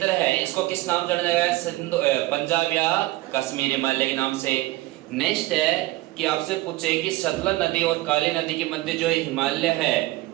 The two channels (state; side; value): quieter; left; 18.7 dB